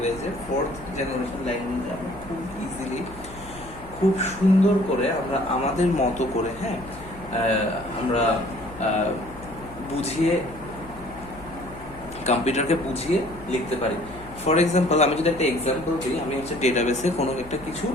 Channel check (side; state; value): left; noise; hum, 18 dB below the sound